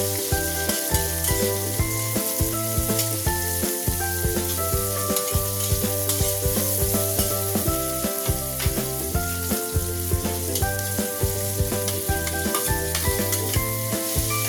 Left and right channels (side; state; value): both; identical; correlation 1.00